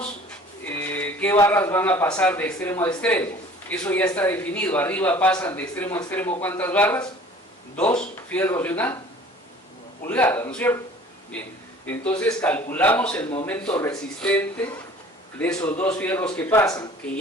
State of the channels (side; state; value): both; normal; correlation 0.48